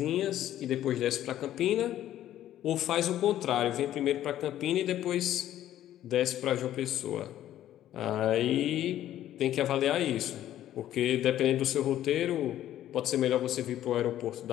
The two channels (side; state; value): right; quieter; 12.4 dB